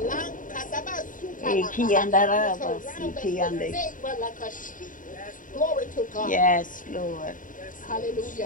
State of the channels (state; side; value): late; right; 0.38 ms